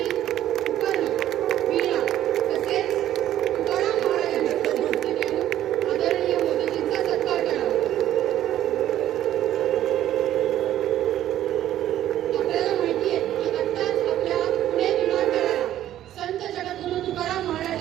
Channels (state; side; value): quieter; left; 12.4 dB